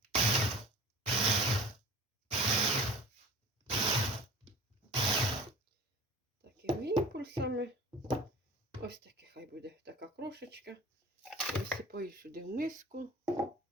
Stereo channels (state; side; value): normal; both; correlation 0.42